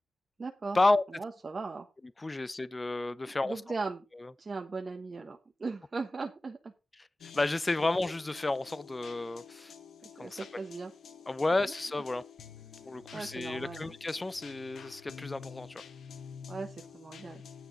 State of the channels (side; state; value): both; normal; correlation 0.96